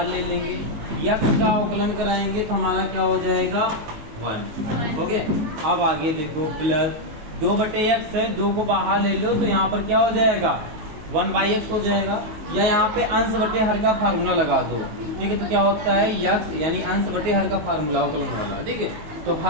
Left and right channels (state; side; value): late; left; 19 ms